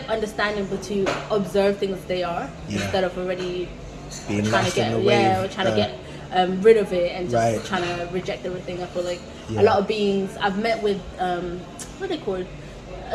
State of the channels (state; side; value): identical; both; correlation 1.00